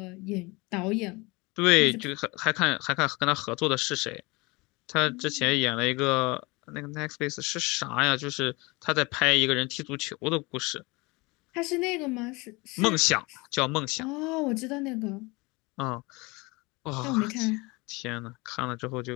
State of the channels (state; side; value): quieter; right; 25.0 dB